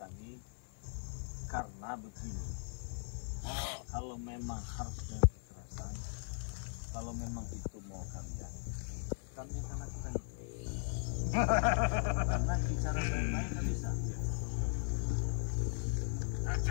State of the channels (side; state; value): right; silent; 52 dB below the other